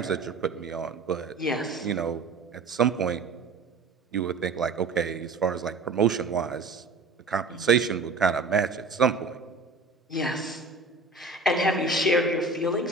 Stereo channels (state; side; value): quieter; left; 3.7 dB